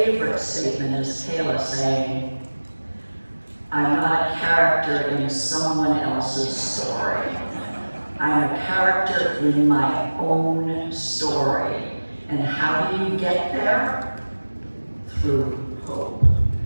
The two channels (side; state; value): both; inverted; correlation -1.00